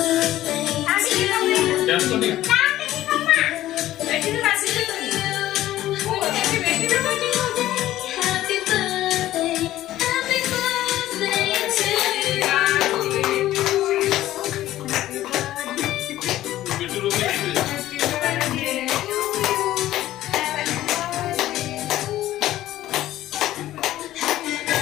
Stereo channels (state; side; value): quieter; right; 14.3 dB